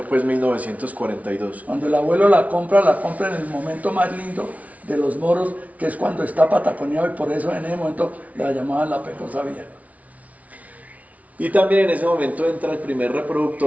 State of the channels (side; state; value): left; late; 0.069 ms